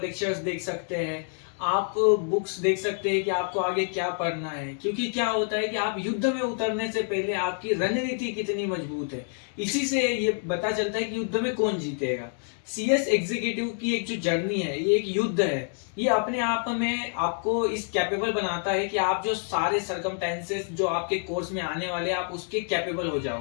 देख सकते हैं, आप बुक्स देख सकते हैं कि आपको आगे क्या पढ़ना है। क्योंकि क्या होता है कि आप युद्ध में उतरने से पहले आपकी रणनीति कितनी मजबूत है, इसी से ये पता चलता है कि युद्ध में कौन जीतेगा। सीएस एग्जीक्यूटिव की एक जो जर्नी है, ये एक युद्ध है। ये अपने आप में आपको इस कैपेबल बनाता है कि आप जो सारे सरकमटेंसेस जो आपके कोर्स में आने वाले हैं, आप उसके कैपेबल हो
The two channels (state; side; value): silent; right; 60 dB below the other